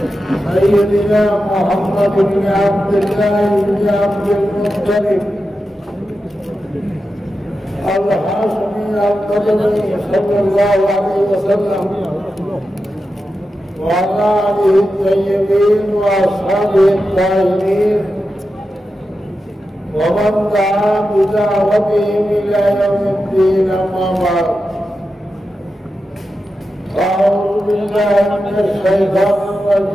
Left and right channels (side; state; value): both; normal; correlation 0.90